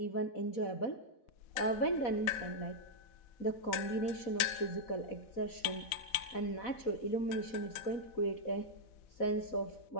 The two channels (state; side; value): late; right; 4.1 ms